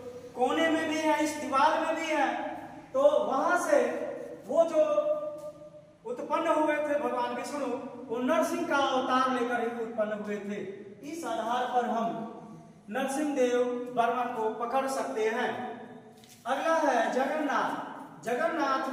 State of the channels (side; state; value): both; identical; correlation 1.00